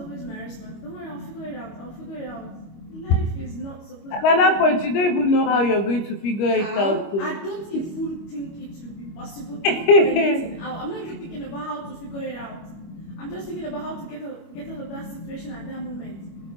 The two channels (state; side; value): late; right; 25 ms